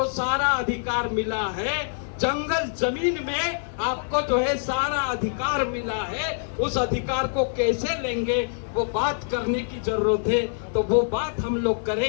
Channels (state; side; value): silent; right; 62 dB below the other